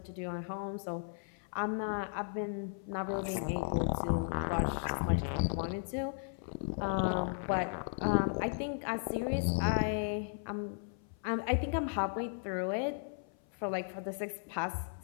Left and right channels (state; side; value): silent; right; 54 dB below the other